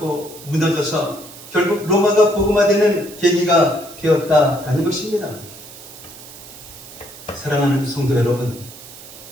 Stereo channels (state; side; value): noise; right; hiss, 17 dB below the sound